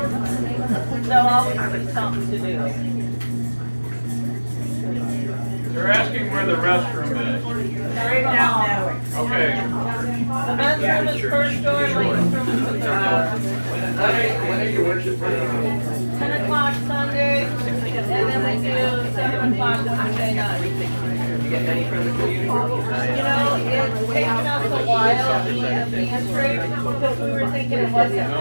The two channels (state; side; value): inverted; both; correlation -1.00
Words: there'll always be something to do. They're asking where the restroom is. Right now. Okay. The men's room is first door, ladies' room is the third door. When are your worship Fridays? 10 o'clock Sunday, and then we do 7 o'clock Wednesday night. You get any from the community? You know, it's taken us a while being a pantry, because we were thinking it wasn't